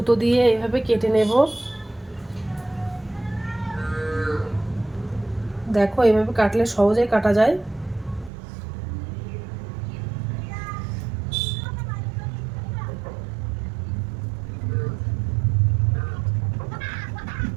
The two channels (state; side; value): drops out; left; at 8.3 s